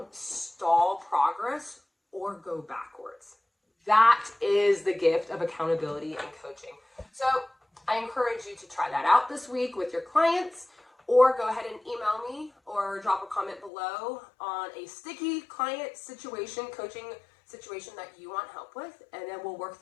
stall progress or go backwards. That is the gift of accountability and coaching. So I encourage you to try that out this week with your clients, or go ahead and email me or drop a comment below on a sticky client situation, coaching situation that you want help with, and then we'll work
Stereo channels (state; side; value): drops out; right; at 13.7 s